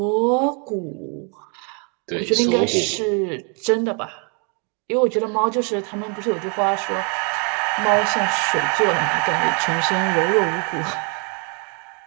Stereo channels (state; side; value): quieter; left; 37.4 dB